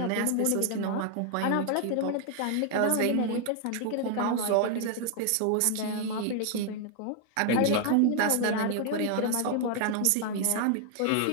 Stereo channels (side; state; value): both; different; correlation 0.00